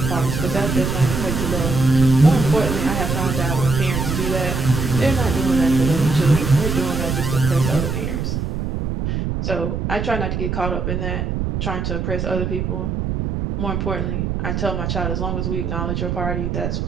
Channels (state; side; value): noise; right; rumble, 2 dB below the sound